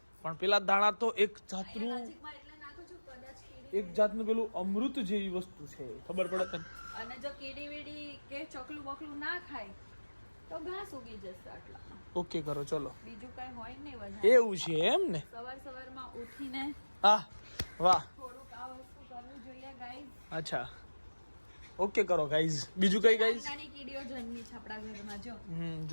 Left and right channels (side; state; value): both; inverted; correlation -1.00